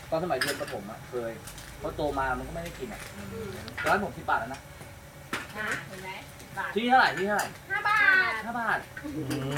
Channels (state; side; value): identical; both; correlation 1.00